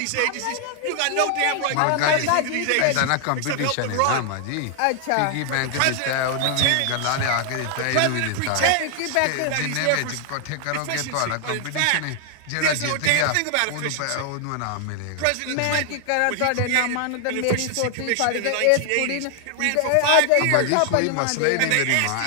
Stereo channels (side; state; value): both; different; correlation 0.00